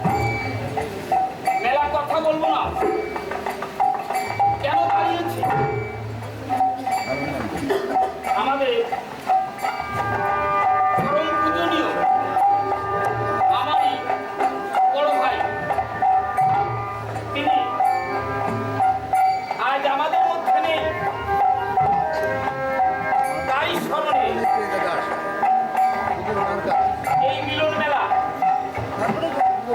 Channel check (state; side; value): identical; both; correlation 1.00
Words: মেলা কথা বলবো না, কেন দাঁড়িয়েছি? আমাদের পরম পূজনীয় আমারই বড় ভাই, তিনি আজ আমাদের মধ্যে নেই। তাই স্মরণে এই মিলন মেলা